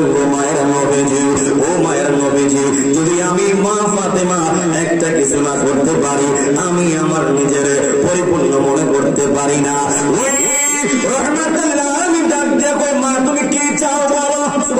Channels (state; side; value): identical; both; correlation 1.00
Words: গো মায়ের নবীজি। ও মায়ের নবীজি যদি আমি মা ফাতেমা একটা কিছু না করতে পারি, আমি আমার নিজের পরিপূর্ণ মনে করতে পারি না। ওই রহমাতুল লিল আলামিন ডাক দিয়ে কই, মা তুমি কি চাও বলো,